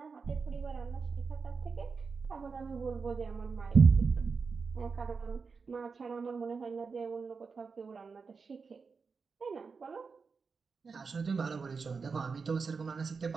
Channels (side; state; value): left; quieter; 5.0 dB